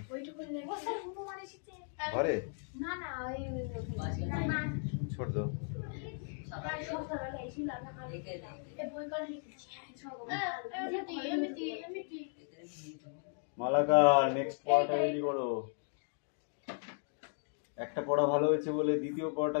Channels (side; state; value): right; silent; 54 dB below the other